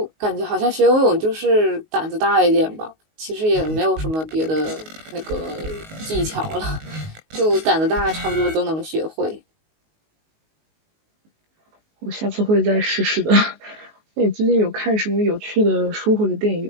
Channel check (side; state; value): left; late; 19 ms